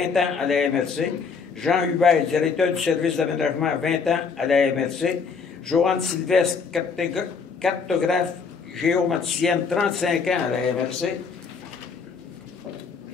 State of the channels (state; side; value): quieter; right; 5.4 dB